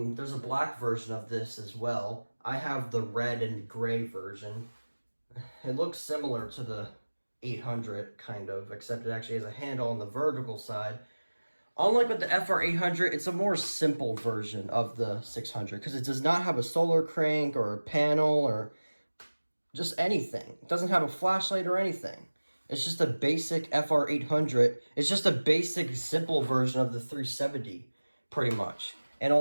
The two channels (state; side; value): inverted; both; correlation -1.00